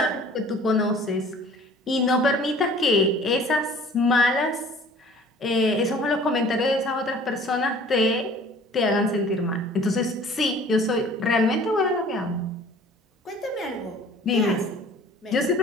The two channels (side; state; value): both; normal; correlation 0.49